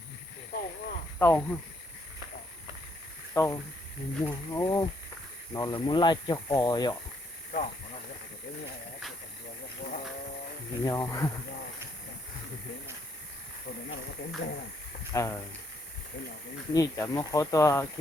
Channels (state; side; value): normal; both; correlation 0.71